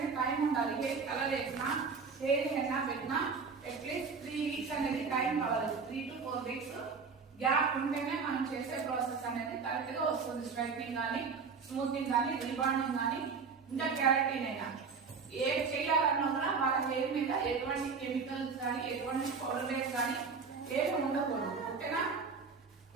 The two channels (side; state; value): left; quieter; 5.2 dB